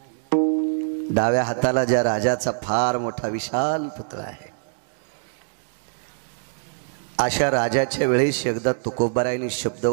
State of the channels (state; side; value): silent; left; digital silence